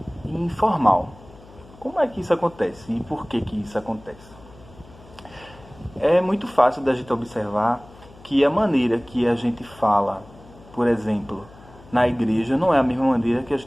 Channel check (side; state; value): left; noise; hum, 22 dB below the sound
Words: e informal. Como é que isso acontece e por que isso acontece? É muito fácil da gente observar que a maneira que a gente fala, por exemplo, na igreja, não é a mesma maneira que a